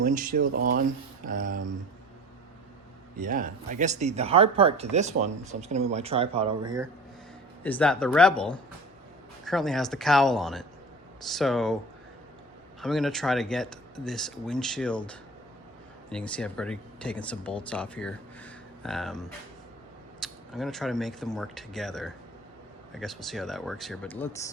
windshield on. Yeah, I guess the hard part to this one, so I'm just gonna move my tripod over here, is that the Rebel currently has the cowl on it. So I'm gonna try to get this windshield, and you can see I've already taken some bolts off here. I'm gonna try to make them work together. I guess we'll see how that works here, but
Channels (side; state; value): both; normal; correlation 0.40